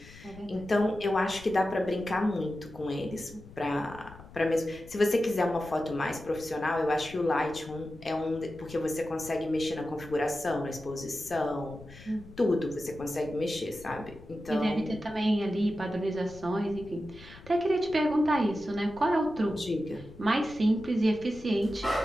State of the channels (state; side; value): noise; left; rumble, 19 dB below the sound